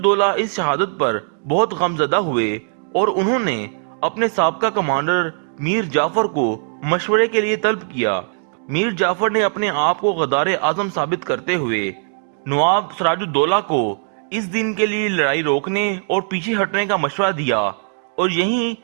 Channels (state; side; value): silent; left; digital silence